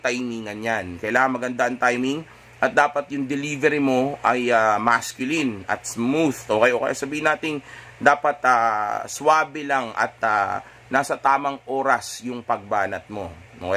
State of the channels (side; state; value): both; identical; correlation 1.00